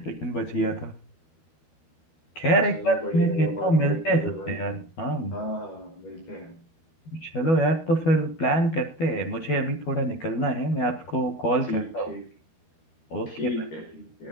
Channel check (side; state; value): right; late; 12 ms